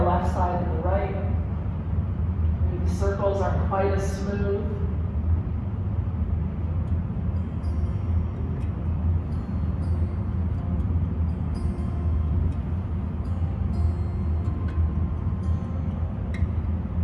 the left side than the right. Maybe the circles aren't quite as smooth.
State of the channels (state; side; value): identical; both; correlation 1.00